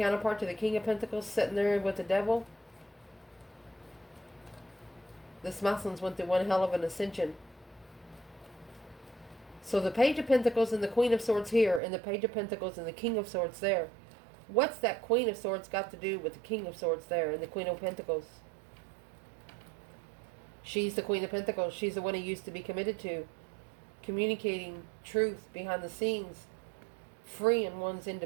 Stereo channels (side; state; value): left; drops out; at 11.8 s